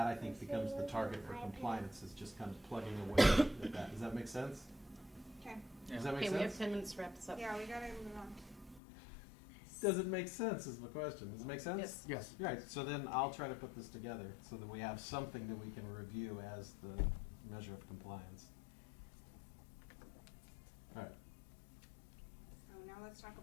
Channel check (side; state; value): right; drops out; at 8.8 s